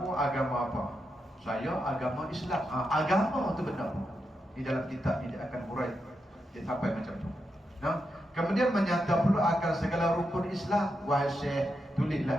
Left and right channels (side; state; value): both; normal; correlation 0.85